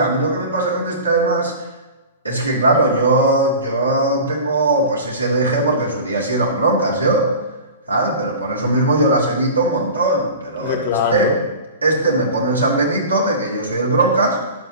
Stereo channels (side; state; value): both; inverted; correlation -0.36